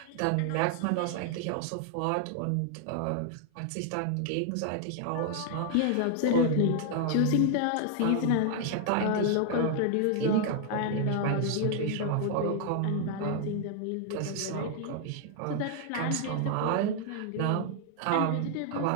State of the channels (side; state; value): both; different; correlation 0.00